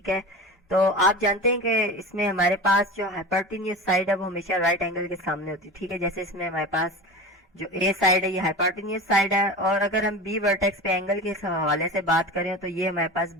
है, तो आप जानते हैं कि इसमें हमारे पास जो हाइपोटेन्यूज साइड है वो हमेशा राइट एंगल के सामने होती है, ठीक है। जैसे इसमें हमारे पास जो ए साइड है ये हाइपोटेन्यूज साइड है, और अगर हम बी वर्टेक्स पे एंगल के हवाले से बात करें तो ये हमारे पास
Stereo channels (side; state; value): both; normal; correlation 0.30